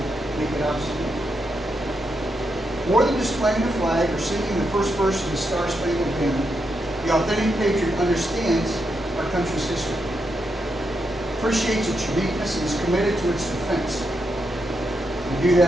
make it obsolete. More than displaying the flag or singing the first verse of the Star-Spangled Banner, the authentic patriot understands our country's history, appreciates its uniqueness, and is committed to its defense. We do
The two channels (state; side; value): normal; both; correlation 0.83